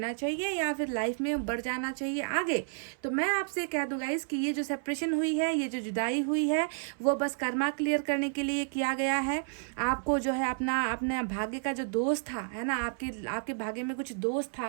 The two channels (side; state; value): left; silent; 57 dB below the other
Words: चाहिए या फिर लाइफ में बढ़ जाना चाहिए आगे। तो मैं आपसे कह दूँ गाइस कि ये जो सेपरेशन हुई है, ये जो जुदाई हुई है, वो बस कर्मा क्लियर करने के लिए किया गया है। आपको जो है अपने भाग्य का जो दोष था, है ना, आपके भाग्य में कुछ दोष